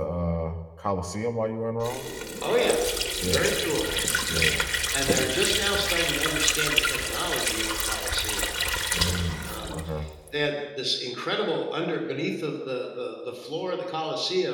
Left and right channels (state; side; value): identical; both; correlation 1.00